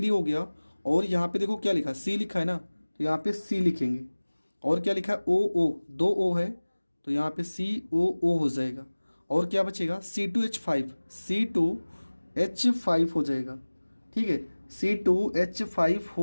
हो गया, और यहाँ पे देखो क्या लिखा, C लिखा है ना, तो यहाँ पे C लिखेंगे। और क्या लिखा है, OO, 2 O है, तो यहाँ पे COO हो जाएगा। और क्या बचेगा, C2H5 हो जाएगा। ठीक है, C2H5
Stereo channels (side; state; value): both; inverted; correlation -1.00